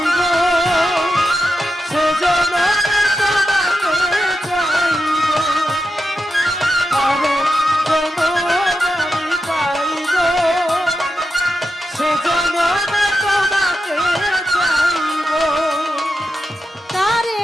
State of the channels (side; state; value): both; normal; correlation 0.88